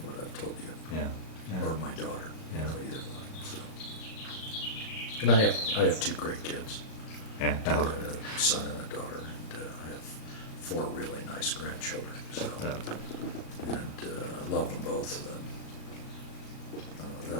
what I've told you, Yeah. or my daughter, Yeah. either one. So, and I have two great kids. Yeah. I got a son and a daughter, and I have 4 really nice grandchildren. So, and I love them both, and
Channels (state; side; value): late; right; 37 ms